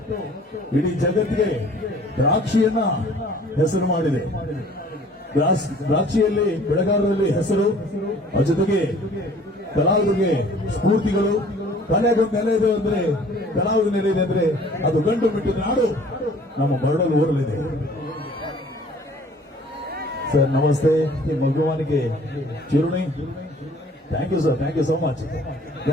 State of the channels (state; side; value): normal; both; correlation 0.52